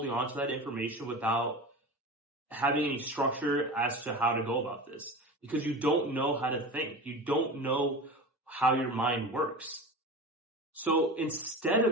on to that information without having any structure as to how to go about this, because you don't know how to think. You don't know how your mind works. So instead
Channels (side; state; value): both; normal; correlation 0.31